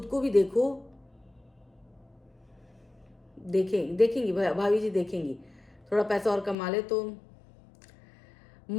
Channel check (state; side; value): drops out; right; at 6.6 s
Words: को भी देखो। देखेंगी भाभी जी, देखेंगी, थोड़ा पैसा और कमा ले तो।